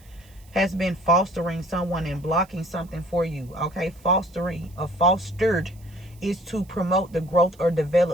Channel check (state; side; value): noise; right; hiss, 28 dB below the sound